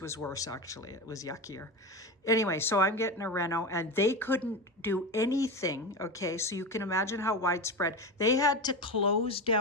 worse, actually. It was yuckier. Anyway, so I'm getting a reno, and they couldn't do anything, okay? So you can imagine how widespread. They had to close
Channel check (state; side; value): normal; both; correlation 0.22